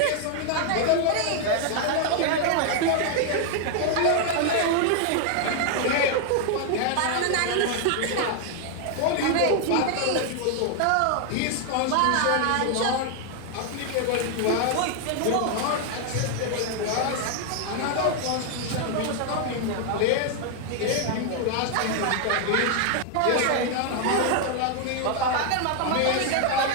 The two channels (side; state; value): both; different; correlation 0.00